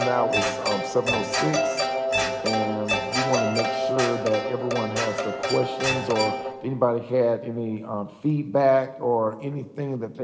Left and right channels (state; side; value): identical; both; correlation 1.00